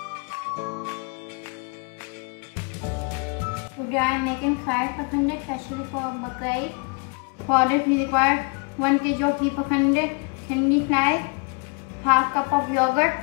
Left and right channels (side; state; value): right; quieter; 34.3 dB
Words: Today I am making fried pasanday especially for Bakra Eid. For this we require 1 kg of beef pasanday, thinly sliced, half cup of yogurt,